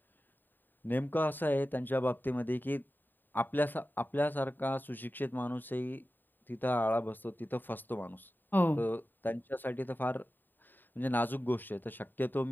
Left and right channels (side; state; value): right; late; 0.091 ms